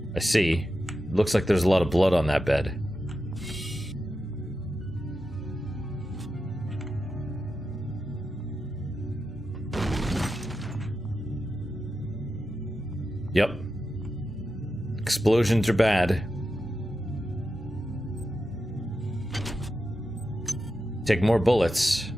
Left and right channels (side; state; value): both; normal; correlation 0.89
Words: I see. Looks like there's a lot of blood on that bed. Explosions are bad. Take more bullets,